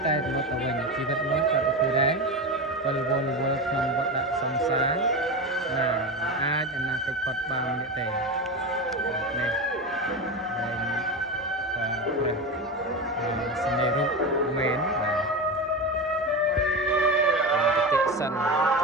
តែរលត់ទៅវិញជីវិតនោះក៏ដូចដែរវល់ក្នុងវដ្តសង្សារអាចអនាគតផុតបាននេះទេនេះហើយព្រះសនេរុមែនបាទប្រតិសិនជ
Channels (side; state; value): both; normal; correlation 0.21